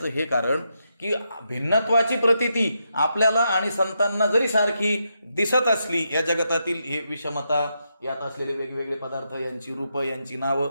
हे कारण, की भिन्नत्वाची प्रतीती आपल्याला आणि संतांना जरी सारखी दिसत असली, या जगतातील हे विषमता, यात असलेले वेगवेगळे पदार्थ, यांची रूपं, यांची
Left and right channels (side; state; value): both; inverted; correlation -0.83